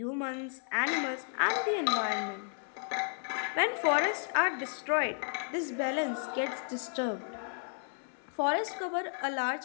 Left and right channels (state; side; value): silent; right; 56 dB below the other